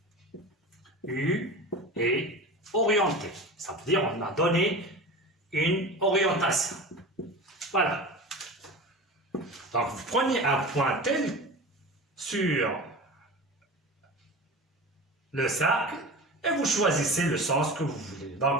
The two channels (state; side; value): normal; both; correlation 0.32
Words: U est orienté. Ça veut dire qu'on a donné une orientation. Voilà. Donc, vous prenez un point tel sur le cercle et vous choisissez le sens que vous voulez.